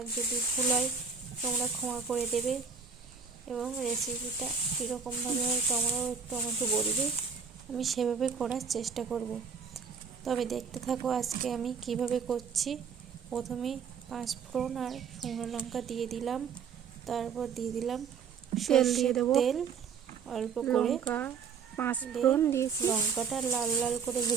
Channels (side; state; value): left; quieter; 6.3 dB